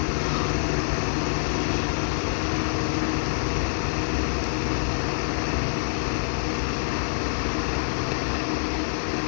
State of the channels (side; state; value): right; silent; digital silence